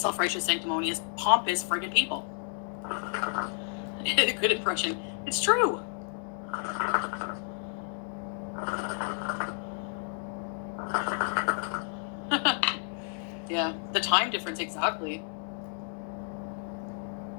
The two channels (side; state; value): right; silent; 57 dB below the other